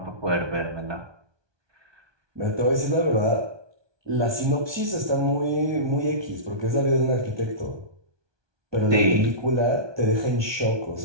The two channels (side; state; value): left; late; 1.2 ms